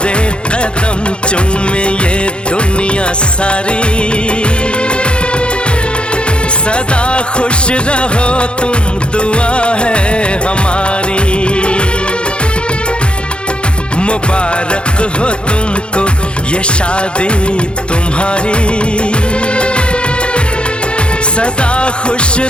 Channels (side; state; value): right; late; 0.056 ms